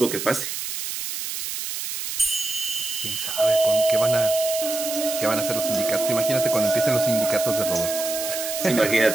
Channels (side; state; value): right; noise; hiss, 5 dB below the sound